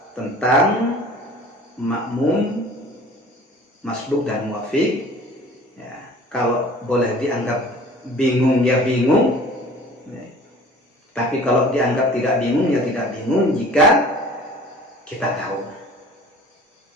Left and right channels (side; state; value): both; normal; correlation 0.46